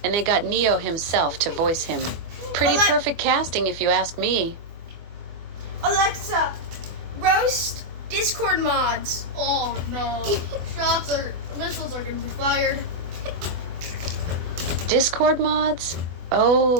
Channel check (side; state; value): left; late; 24 ms